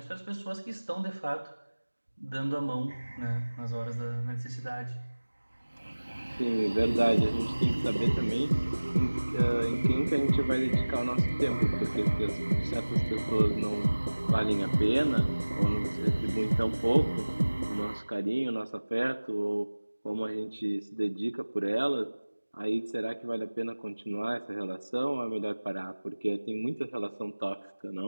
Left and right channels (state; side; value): inverted; both; correlation -1.00